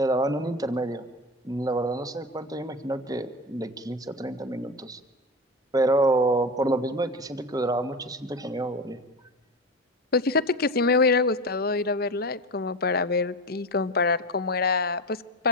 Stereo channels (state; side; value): normal; both; correlation 0.24